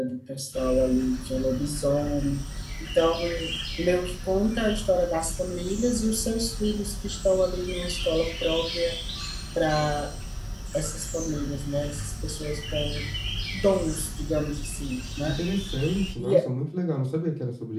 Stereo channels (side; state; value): both; identical; correlation 1.00